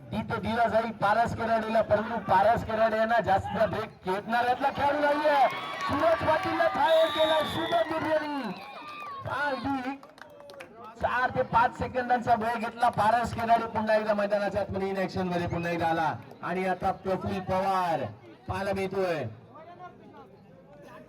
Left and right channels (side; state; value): both; identical; correlation 1.00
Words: तिथे दिला जाईल पारस खराडेला, परंतु पारस खराडे यांना जास्त ब्रेक खेळणाऱ्यातला खेळाडू नाहीये. सूरज पाटीलला फायर केला शुभम बिर्जेनी. अगदी 4 ते 5 सेकंदांचा वेळ घेतला. पारस खराडे पुन्हा एकदा मैदानाच्या आतमध्ये इन ऍक्शन मध्ये पुन्हा एकदा आला. आणि आता प्रफुल्ल पवार पाहायला मिळतोय.